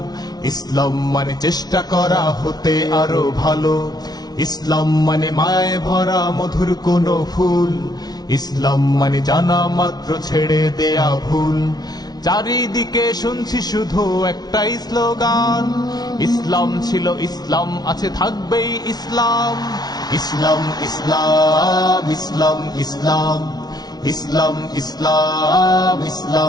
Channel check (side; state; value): right; late; 0.19 ms